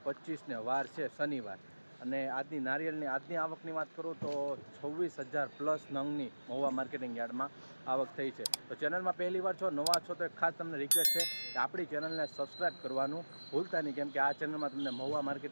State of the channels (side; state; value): both; inverted; correlation -1.00